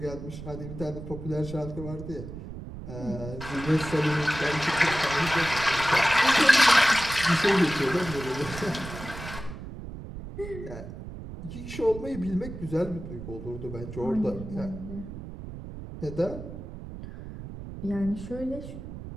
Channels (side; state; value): right; noise; rumble, 11 dB below the sound